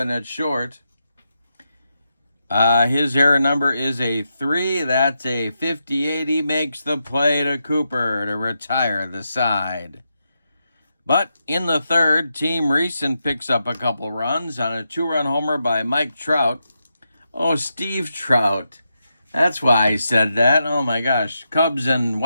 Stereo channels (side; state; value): both; inverted; correlation -0.86